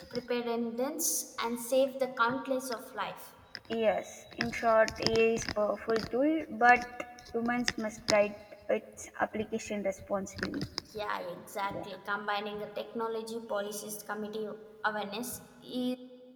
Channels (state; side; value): identical; both; correlation 1.00